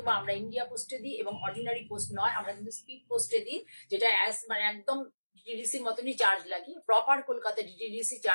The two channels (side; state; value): both; inverted; correlation -1.00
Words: আমরা ইন্ডিয়া পোস্টে দিই, এবং অর্ডিনারি পোস্ট নয়, আমরা কিন্তু স্পিড পোস্টে দিই, যেটা মানে একদম ডিটিডিসির মতনই চার্জ লাগে। প্রপার কলকাতা ডিটিডিসি